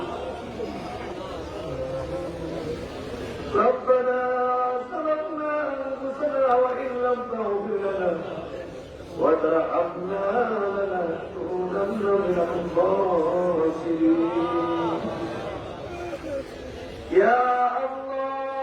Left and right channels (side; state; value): both; identical; correlation 1.00